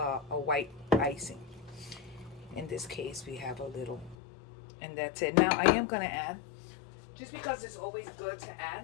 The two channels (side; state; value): right; drops out; at 4.2 s